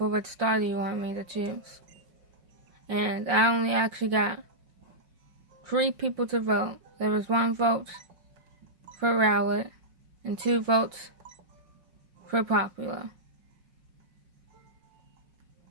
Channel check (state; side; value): late; left; 5.7 ms